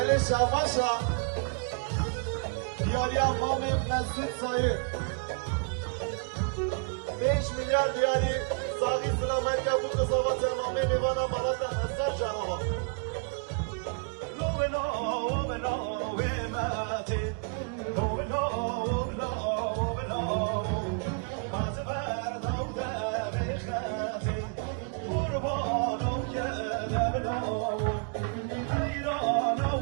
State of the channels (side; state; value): left; quieter; 37.6 dB